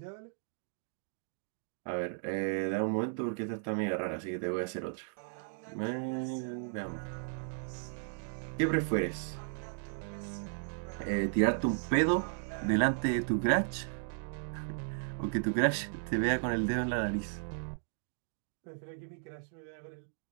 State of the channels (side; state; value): left; silent; digital silence